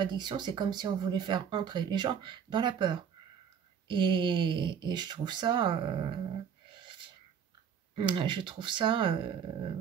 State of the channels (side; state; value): left; quieter; 7.7 dB